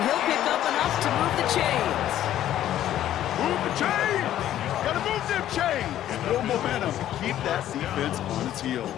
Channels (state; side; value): quieter; right; 12.2 dB